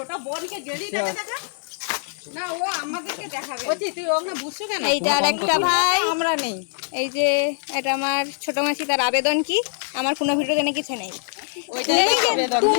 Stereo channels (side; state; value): right; silent; digital silence